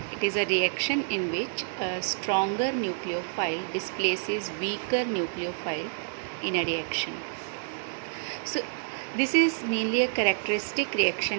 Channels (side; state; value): left; silent; digital silence